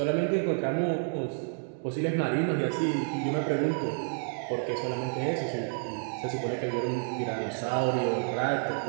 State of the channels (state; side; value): silent; left; 58 dB below the other